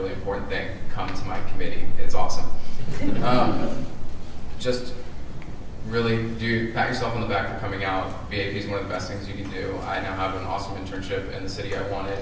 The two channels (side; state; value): both; identical; correlation 1.00